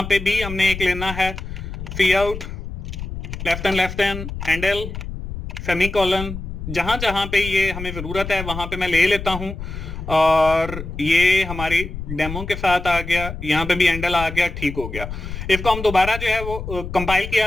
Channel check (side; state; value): left; noise; rumble, 8 dB below the sound